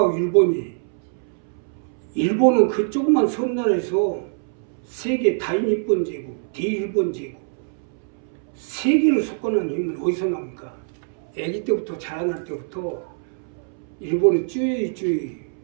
일본은 그 조그만 섬나라에서 세계 다인일본 제국, 대일본 제국, 세계를 속거는 힘은 어디서 나옵니까? 아기 때부터 자라날 때부터 일본의 쭈이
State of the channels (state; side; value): silent; left; 63 dB below the other